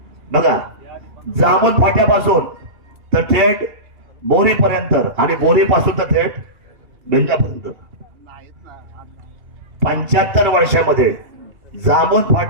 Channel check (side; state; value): left; late; 2.7 ms